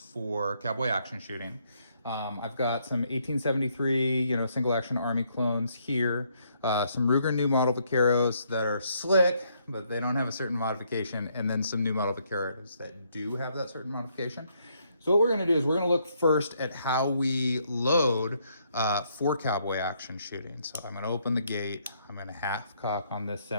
cowboy action shooting. I've got some 1873, single action Army clones here, some Ruger new model Vaqueros that are slick, but they don't have a certain modification, and then some new model Vaqueros that do have that certain modification. So what we're going to do is we're going to look first at how we load for cowboy action shooting. So I'm going to open the gate. I'm going to half cock on this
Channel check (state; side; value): inverted; both; correlation -0.72